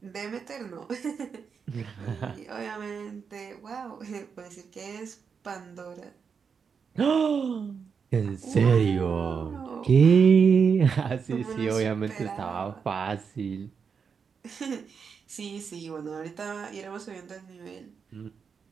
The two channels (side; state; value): left; quieter; 6.1 dB